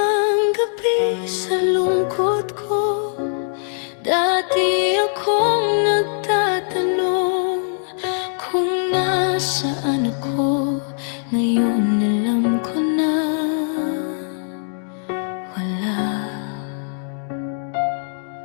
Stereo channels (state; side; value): silent; right; digital silence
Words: gabi sa lungkot ko. Dati akong nagtatanong kung nasaan ako. Ngayon alam ko na wala.